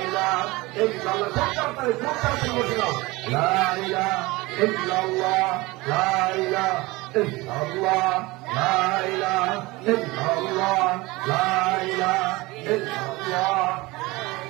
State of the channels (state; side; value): quieter; left; 21.9 dB